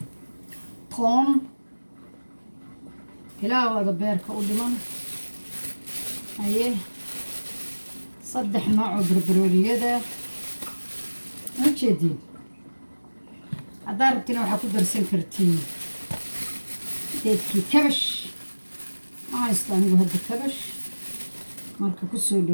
toon ilaa wada beerka u dhiman aye 3 nooc oo barbarooniyada u jeediin haddaad rabtiin waxaa ku darsan kartiin geedkii kabash ma haysto anigu hadda kabash marka ku soo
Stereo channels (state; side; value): inverted; both; correlation -1.00